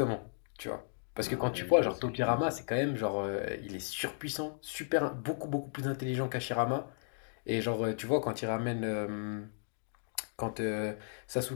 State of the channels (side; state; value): right; silent; digital silence